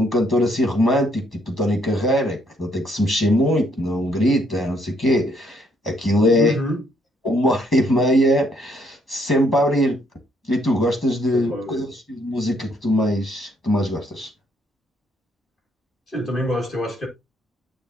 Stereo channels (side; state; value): both; normal; correlation 0.70